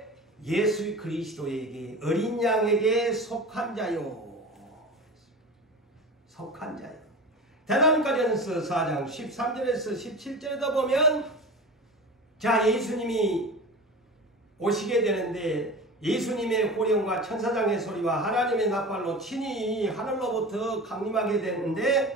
예수 그리스도에게 어린 양에게 속한 자요. 속한 자요. 대사로니가전서 4장 13절에서 17절에도 보면 자 예수님이 오시게 되는데 예수님의 호령과 천사장의 소리와 하나님의 납발로 친히 하늘로부터 강림하게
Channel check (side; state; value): both; normal; correlation 0.32